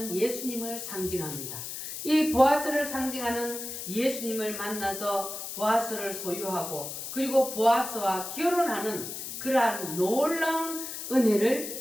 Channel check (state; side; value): noise; left; hiss, 7 dB below the sound